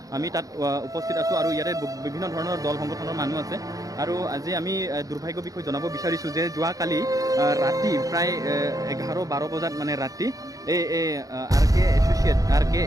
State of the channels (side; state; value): left; late; 0.17 ms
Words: আমি তাত উপস্থিত আছোঁ আৰু ইয়াতে বিভিন্ন ধৰণৰ দল সংগঠনৰ মানুহ আছে আৰু আজি আমি দুৰ্ভাগ্যৰ বিষয়ে জনাব বিচাৰিছোঁ যে যোৱাকালি ৰাতি প্ৰায় 11-12 বজাত মানে ৰাতি এই RK